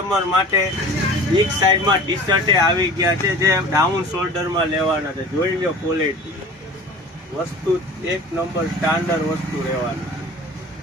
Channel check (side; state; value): both; normal; correlation 0.41